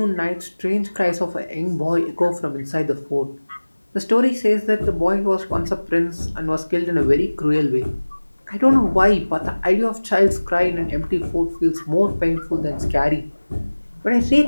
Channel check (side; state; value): both; inverted; correlation -1.00